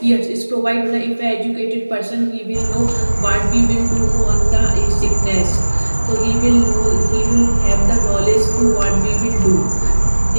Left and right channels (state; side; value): inverted; both; correlation -1.00